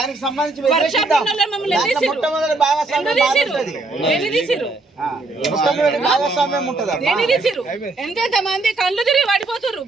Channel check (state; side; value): quieter; left; 3.3 dB